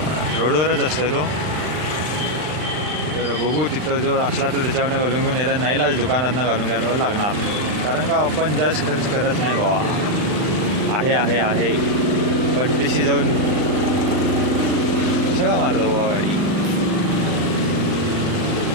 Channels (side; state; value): left; late; 39 ms